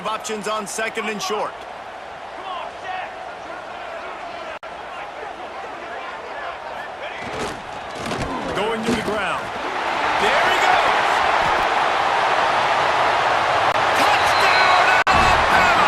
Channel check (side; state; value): both; identical; correlation 1.00